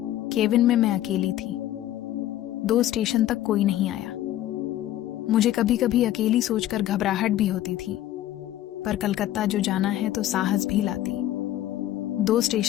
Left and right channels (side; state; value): right; quieter; 13.3 dB